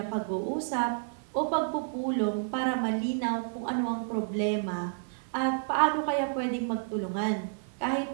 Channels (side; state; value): left; silent; 56 dB below the other